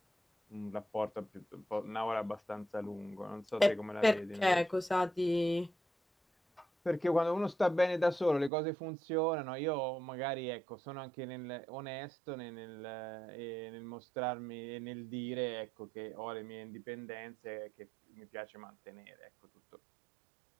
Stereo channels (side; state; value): left; drops out; at 8.5 s